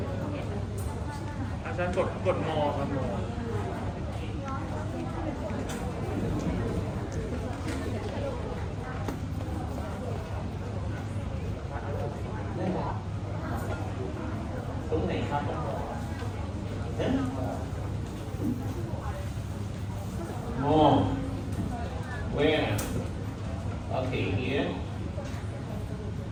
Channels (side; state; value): both; identical; correlation 1.00